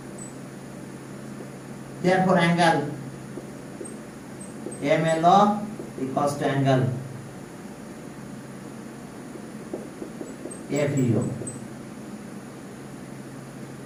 angle MLO equals to angle FEO।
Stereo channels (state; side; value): identical; both; correlation 1.00